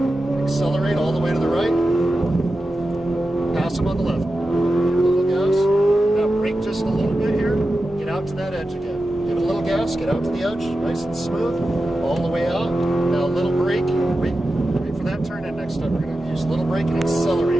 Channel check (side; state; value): both; normal; correlation 0.92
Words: Accelerate all the way to the right. Pass him on the left. Give it a little gas. Now brake just a little bit here. Get out to that edge again. Give it a little gas. Get out to the edge. Nice and smooth. All the way out. Now a little brake. Wait for that turn in next time. We're going to use a little brake and